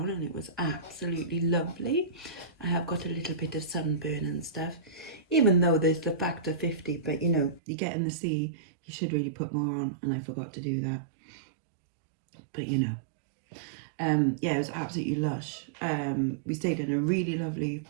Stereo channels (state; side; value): drops out; left; at 7.6 s